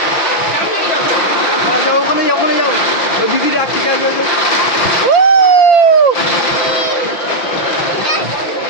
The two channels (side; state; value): right; late; 6.0 ms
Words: যাও ওখানে যাও, ওখানে যাও, ওই দিদি রাখতে যাও, যাও যাও।